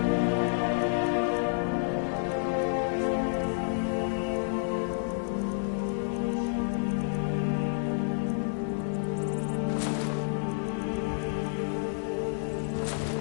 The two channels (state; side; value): silent; right; 58 dB below the other